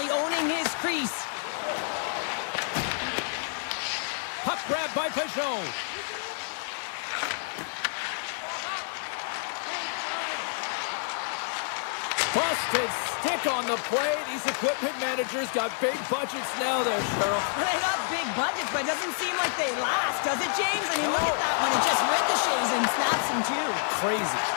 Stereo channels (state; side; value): silent; right; digital silence